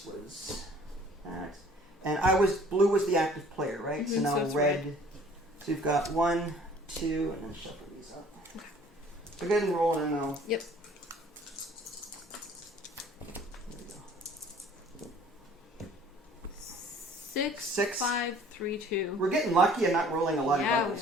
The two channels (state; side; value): normal; both; correlation 0.53